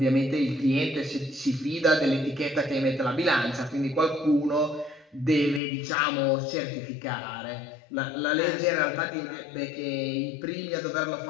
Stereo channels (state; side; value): drops out; right; at 5.6 s